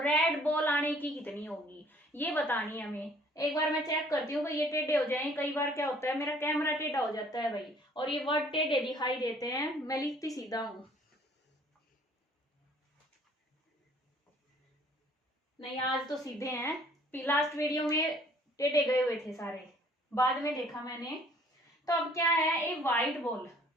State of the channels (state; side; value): normal; both; correlation 0.57